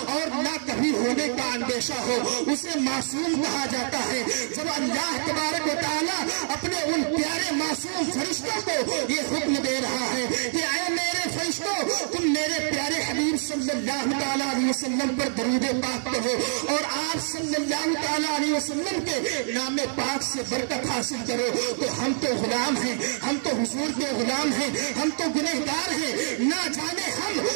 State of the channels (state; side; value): silent; left; digital silence